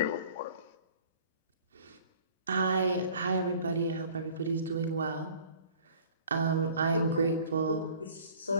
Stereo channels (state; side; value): inverted; both; correlation -0.50